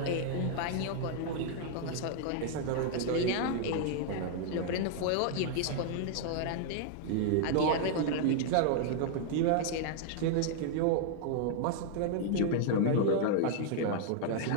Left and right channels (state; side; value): different; both; correlation -0.01